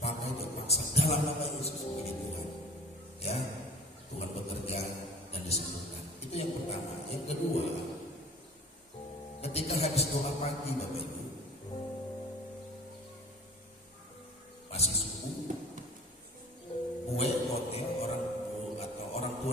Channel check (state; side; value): normal; both; correlation 0.44